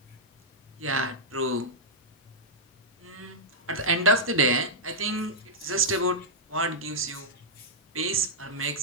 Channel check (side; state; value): both; normal; correlation -0.09